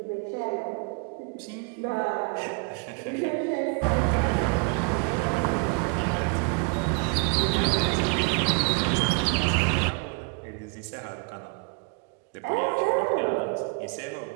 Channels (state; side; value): quieter; left; 36.6 dB